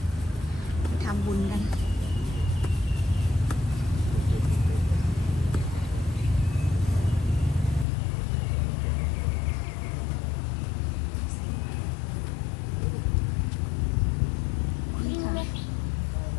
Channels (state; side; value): drops out; right; at 7.9 s